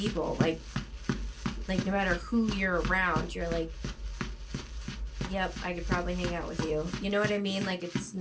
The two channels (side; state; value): both; identical; correlation 1.00